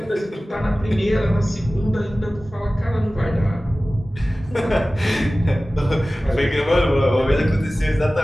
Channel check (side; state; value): both; normal; correlation 0.97